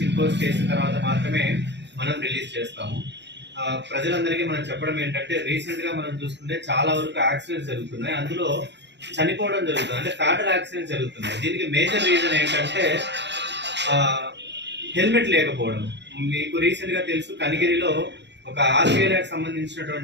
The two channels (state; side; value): late; left; 0.51 ms